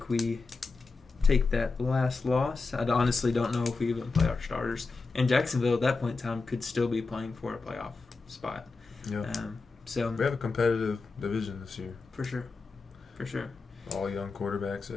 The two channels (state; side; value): quieter; right; 4.1 dB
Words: we take that last loss. I honestly don't know if we even play our starters. And Jacksonville at that point in time could still be playing for a playoff spot. Yeah. So we have a competitive division this year. For sure. All young quarterbacks